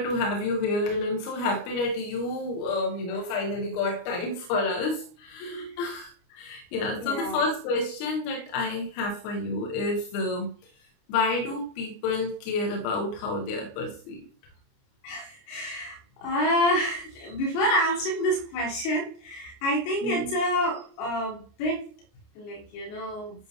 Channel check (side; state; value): right; late; 29 ms